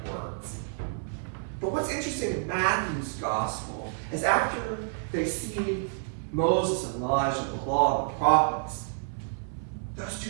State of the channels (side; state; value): left; silent; 56 dB below the other